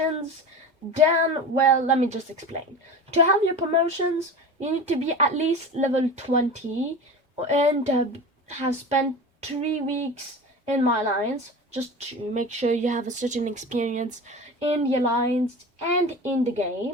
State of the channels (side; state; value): both; normal; correlation 0.31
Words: then, well, let me just explain. To have your promotions, you need to be at least level 20 and have spent 3 weeks in my alliance, just to make sure you have a certain experience in the alliance and in the